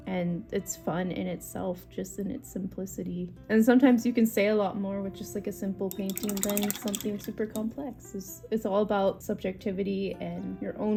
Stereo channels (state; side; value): identical; both; correlation 1.00